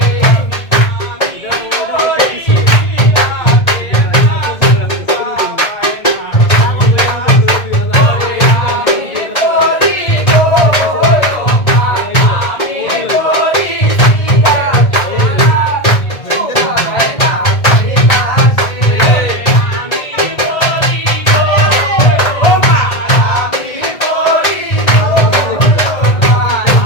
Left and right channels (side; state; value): right; late; 1.7 ms